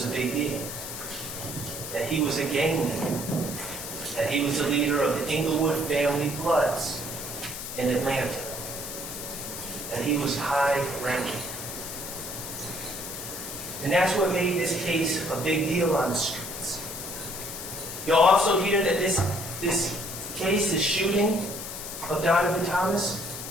a big deal, that he was a gang leader, that he was the leader of the Inglewood family Bloods in Atlanta, that he was high-ranking. And that's what made this case a big deal on the streets. You'll also hear that this case, this shooting of Donovan Thomas,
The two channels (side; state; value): left; noise; hiss, 8 dB below the sound